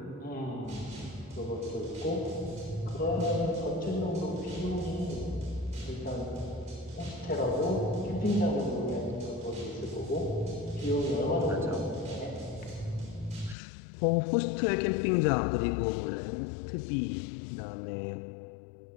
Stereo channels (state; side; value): drops out; right; at 13.6 s